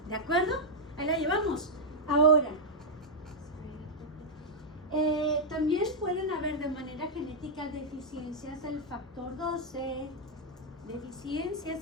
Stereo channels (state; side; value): normal; both; correlation -0.04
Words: ¿De acuerdo? Ahí la llevamos. Ahora, también pueden haber de manera genética deficiencias del factor 12, deficiencias